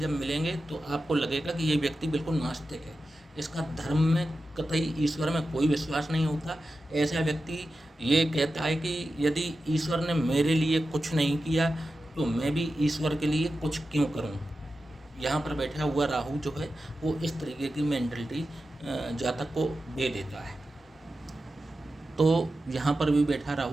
मिलेंगे तो आपको लगेगा कि ये व्यक्ति बिल्कुल नास्तिक है, इसका धर्म में कतई ईश्वर में कोई विश्वास नहीं होता। ऐसा व्यक्ति ये कहता है कि यदि ईश्वर ने मेरे लिए कुछ नहीं किया तो मैं भी ईश्वर के लिए कुछ क्यों करूं। यहाँ पर बैठा हुआ राहु जो है वो इस तरीके की मेंटलिटी जातक को दे देता है। तो यहाँ पर भी बैठा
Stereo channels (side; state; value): both; normal; correlation 0.92